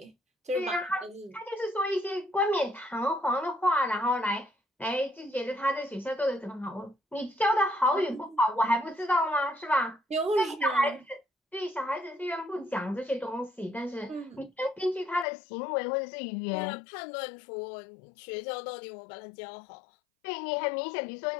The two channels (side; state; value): right; drops out; at 15.2 s